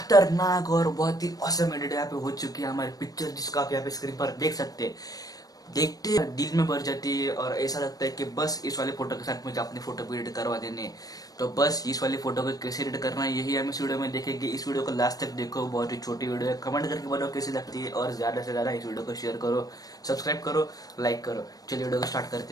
और बहुत ही औसम एडिट यहाँ पे हो चुकी है हमारी पिक्चर, जिसको आप यहाँ पे स्क्रीन पर देख सकते हैं। देखते हैं दिल में भर जाती है और ऐसा लगता है कि बस इस वाले फोटो के साथ मुझे अपनी फोटो को एडिट करवा देने। तो बस इस वाली फोटो को कैसे एडिट करना है यही हम इस वीडियो में देखेंगे। इस वीडियो को लास्ट तक देखो, बहुत ही छोटी वीडियो है। कमेंट करके बताओ कैसी लगती है और ज्यादा से ज्यादा इस वीडियो को शेयर करो, सब्सक्राइब करो, लाइक करो। चलिए वीडियो को स्टार्ट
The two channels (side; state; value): right; late; 0.18 ms